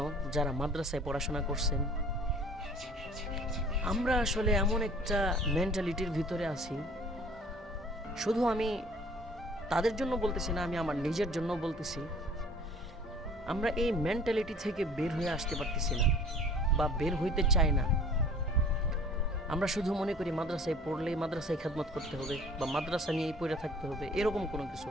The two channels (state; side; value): normal; both; correlation 0.50